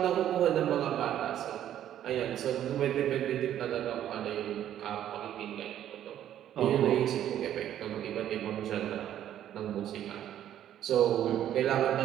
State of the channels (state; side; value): quieter; left; 11.2 dB